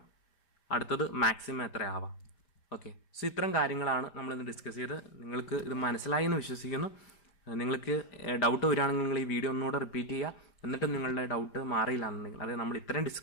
അടുത്തത് മാക്സിമം എത്ര ആവാം. ഓക്കെ, സോ ഇത്തരം കാര്യങ്ങളാണ് നമ്മളിന്ന് ഡിസ്കസ് ചെയ്ത്. നിങ്ങൾക്ക് ഇത് മനസ്സിലായി എന്ന് വിശ്വസിക്കുന്നു. നിങ്ങൾക്ക് ഡൗട്ട് വരികയാണെങ്കിൽ നിങ്ങൾ ഈ വീഡിയോ ഒന്നുകൂടെ റിപ്പീറ്റ് ചെയ്യുക. എന്നിട്ട് നിങ്ങളുടെ ഡൗട്ട് മാറിയില്ല എന്നുണ്ടെങ്കിൽ, അതായത് നമ്മൾ ഇത്രയും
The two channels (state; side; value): late; right; 5.0 ms